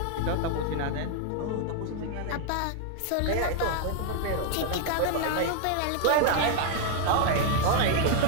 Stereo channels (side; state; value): both; different; correlation 0.00